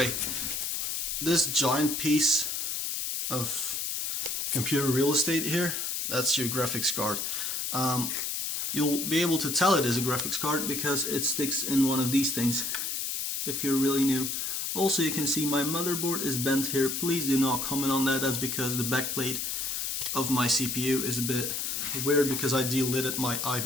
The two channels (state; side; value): noise; left; hiss, 2 dB below the sound